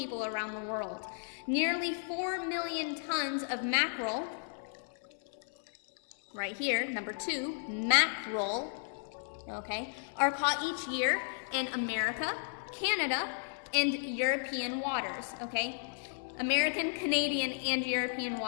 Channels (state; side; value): silent; right; 55 dB below the other